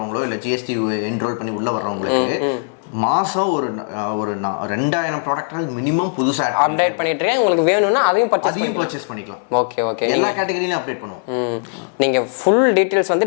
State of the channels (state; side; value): silent; right; digital silence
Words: இல்லை ஜிஎஸ்டி என்ரோல் பண்ணி உள்ளே வர்றவங்களுக்கு மாதம் ஒரு 2000 ப்ராடக்ட் மினிமம் புதுசாக அப்டேட் பண்ணிட்டு இருக்கேன். உங்களுக்கு வேணும்னா அதையும் பர்ச்சேஸ் பண்ணிக்கலாம். ஓகே ஓகே, எல்லா கேட்டகரியிலும் அப்டேட் பண்ணுவோம். நீங்கள் ஃபுல் டீட்டெயில்ஸ் வந்து